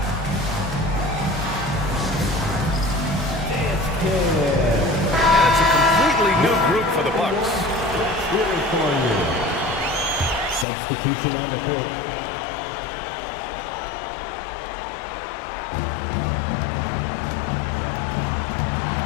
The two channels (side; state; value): right; drops out; at 10.7 s